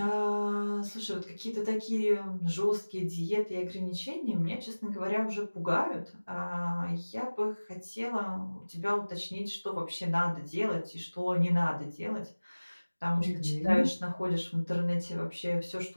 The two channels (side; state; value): both; inverted; correlation -1.00